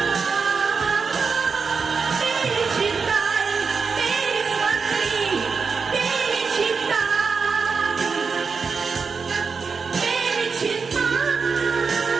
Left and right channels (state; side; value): quieter; left; 5.2 dB